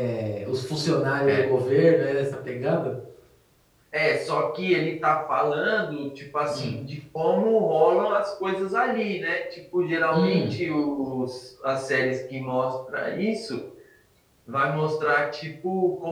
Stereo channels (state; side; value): identical; both; correlation 1.00